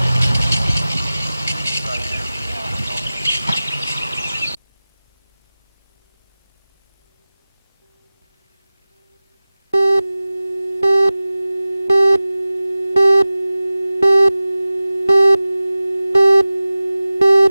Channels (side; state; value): both; inverted; correlation -0.98